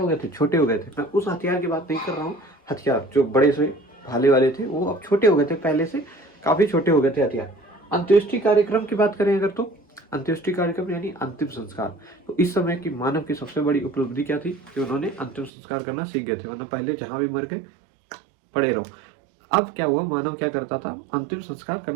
गए थे, छोटे हो गए थे। मैं उस हथियार की बात नहीं कर रहा हूँ, हथियार जो बड़े से भाले वाले थे वो अब छोटे हो गए थे, पहले से काफी छोटे हो गए थे हथियार। अंत्येष्टि कार्यक्रम की बात करें अगर, तो अंत्येष्टि कार्यक्रम यानी अंतिम संस्कार। तो इस समय की मानव की सबसे बड़ी उपलब्धि क्या थी कि उन्होंने अंतिम संस्कार करना सीख गए थे, वरना पहले जहां भी मर गए पड़े रहो। अब क्या हुआ, मानव क्या करता था, अंतिम संस्कार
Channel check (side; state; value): left; drops out; at 15.5 s